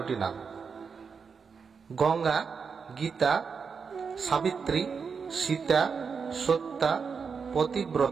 নাম। গঙ্গা, গীতা, সাবিত্রী, সীতা, সত্যা,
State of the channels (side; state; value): left; quieter; 5.7 dB